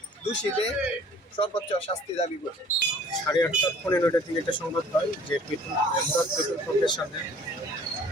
দোষীদের সর্বোচ্চ শাস্তি দাবি করি। 8:30-15টার দিকে একটা সংবাদ হয় যে পেট্রোল পাম্পের সামনে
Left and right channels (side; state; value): both; normal; correlation 0.52